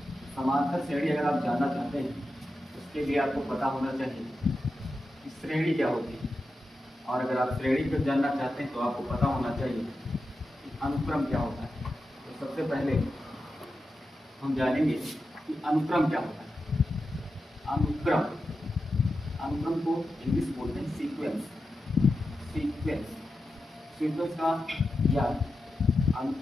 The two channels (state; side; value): normal; both; correlation 0.90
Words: समांतर श्रेणी अगर आप जानना चाहते हैं उसके लिए आपको पता होना चाहिए कि श्रेणी क्या होती है, और अगर आप श्रेणी को जानना चाहते हैं तो आपको पता होना चाहिए कि अनुक्रम क्या होता है। तो सबसे पहले हम जानेंगे कि अनुक्रम क्या होता है। अनुक्रम को इंग्लिश बोलते हैं सीक्वेंस। सीक्वेंस का या